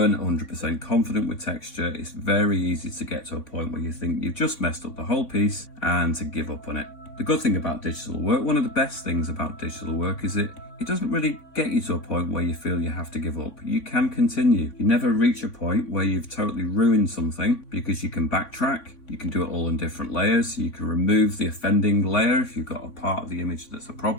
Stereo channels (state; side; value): late; right; 3.6 ms